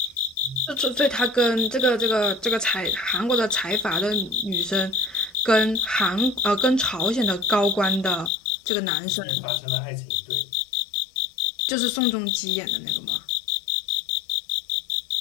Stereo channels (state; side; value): drops out; right; at 8.3 s